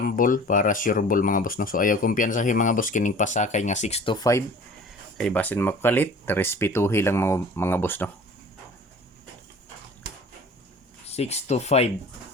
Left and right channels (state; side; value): normal; both; correlation 0.45